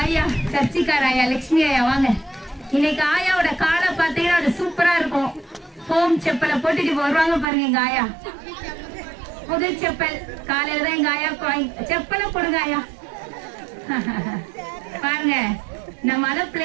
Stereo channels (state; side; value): drops out; left; at 7.5 s